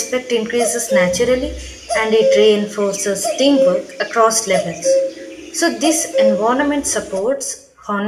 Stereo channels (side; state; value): both; identical; correlation 1.00